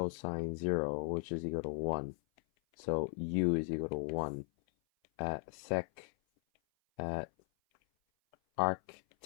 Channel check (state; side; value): silent; right; 53 dB below the other